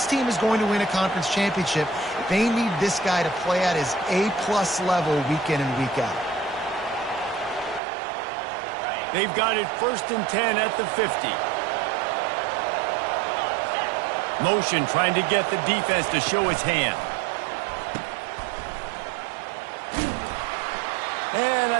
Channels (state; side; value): drops out; left; at 7.8 s